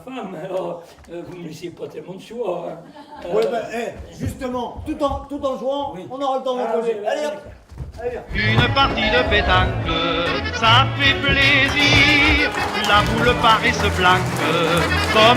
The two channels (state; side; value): identical; both; correlation 1.00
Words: alors vous me laissez pas tellement de choix. Hein. Ouais, ben, justement, tout en jouant, Oui. on aura le temps de Ah, causer. oui, Allez, oui, hop. Allez, viens. Une partie de pétanque, ça fait plaisir. La boule paraît se flanque